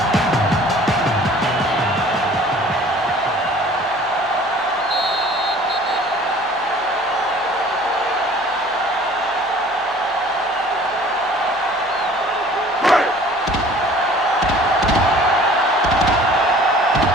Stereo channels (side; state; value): both; normal; correlation 0.50